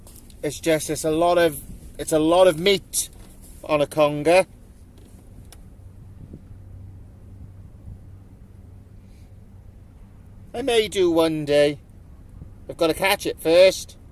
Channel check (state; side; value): identical; both; correlation 1.00